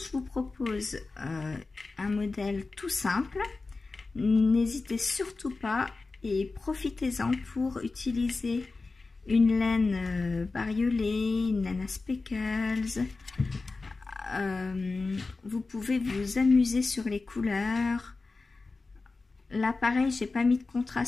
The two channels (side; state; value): right; quieter; 3.7 dB